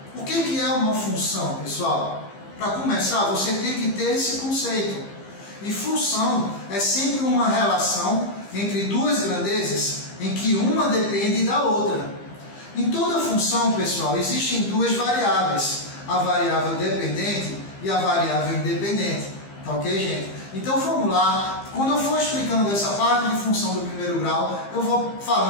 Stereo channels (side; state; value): right; late; 15 ms